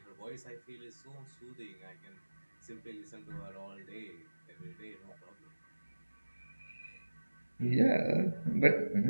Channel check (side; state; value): both; inverted; correlation -1.00